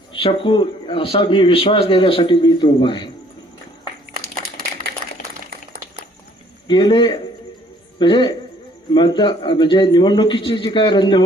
शकू असा मी विश्वास देण्यासाठी मी इथं उभा आहे. गेले म्हणजे निवडणुकीची जी काय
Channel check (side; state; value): both; normal; correlation 0.60